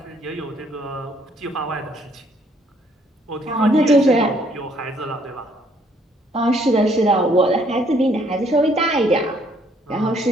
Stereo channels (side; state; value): both; normal; correlation 0.65